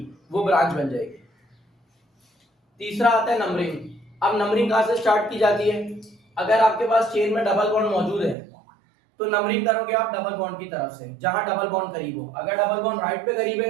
वो ब्रांच बन जाएगी। तीसरा आता है नंबरिंग। अब नंबरिंग कहां से स्टार्ट की जाती है? अगर आपके पास चेन में डबल बॉन्ड मौजूद है तो नंबरिंग करोगे आप डबल बॉन्ड की तरफ से, जहां डबल बॉन्ड करीब हो। अगर डबल बॉन्ड राइट पे करीब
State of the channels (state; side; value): drops out; left; at 8.3 s